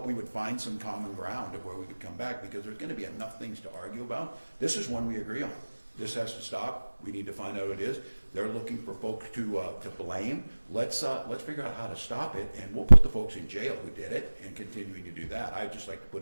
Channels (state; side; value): inverted; both; correlation -1.00